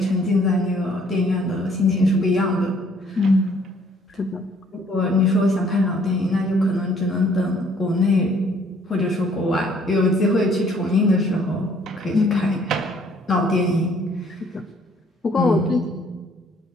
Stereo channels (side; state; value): both; normal; correlation 0.61